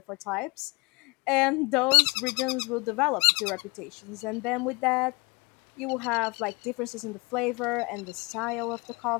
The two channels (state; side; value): quieter; right; 27.8 dB